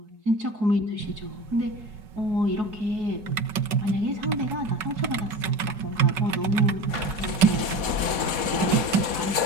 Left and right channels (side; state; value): left; late; 4.2 ms